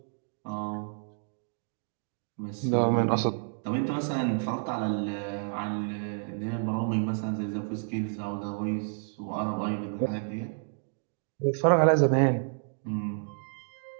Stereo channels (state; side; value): silent; left; 58 dB below the other